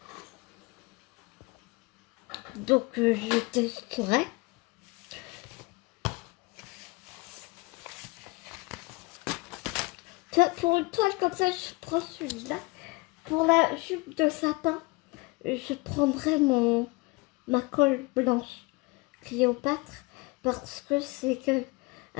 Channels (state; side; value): quieter; right; 25.2 dB